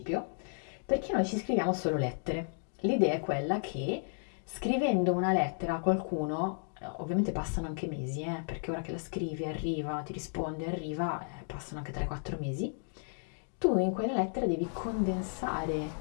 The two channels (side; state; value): right; silent; 56 dB below the other